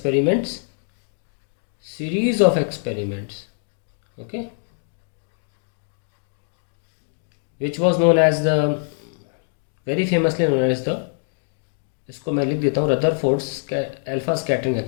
okay, which was known as the, very famously known as the, इसको मैं लिख देता हूँ, Rutherford's alpha scattering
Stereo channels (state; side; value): silent; right; digital silence